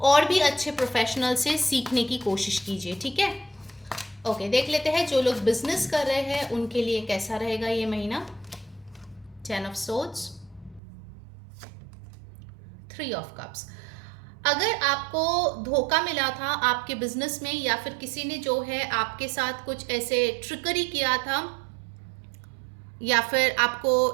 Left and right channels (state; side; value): drops out; left; at 10.8 s